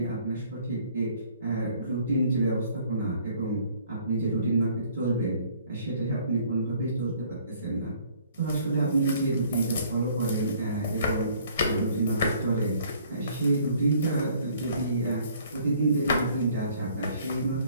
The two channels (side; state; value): both; inverted; correlation -0.59